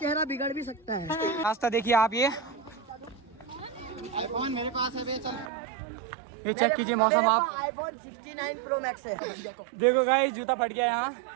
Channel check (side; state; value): left; drops out; at 5.5 s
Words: बिगड़ भी सकता है। रास्ता देखिए आप, ये आईफोन मेरे पास है बे, चल ये चेक कीजिए मौसम आप। आईफोन 69 प्रो मैक्स है। देखो गाइस जूता फट गया यहाँ।